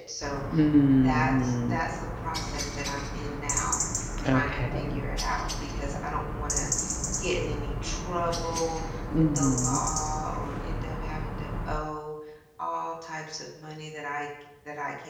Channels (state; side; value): identical; both; correlation 1.00